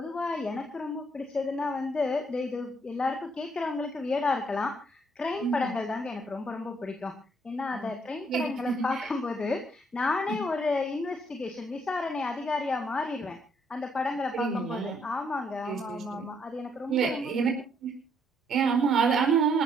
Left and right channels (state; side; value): normal; both; correlation 0.70